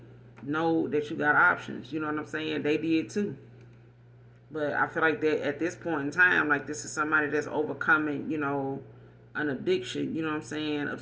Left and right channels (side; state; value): both; identical; correlation 1.00